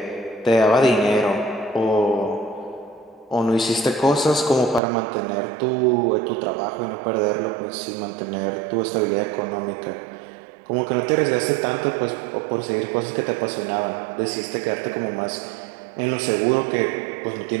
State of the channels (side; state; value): left; drops out; at 4.8 s